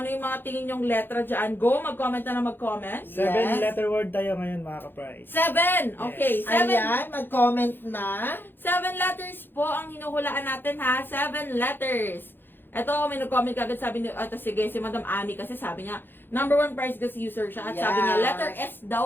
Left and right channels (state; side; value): late; right; 0.099 ms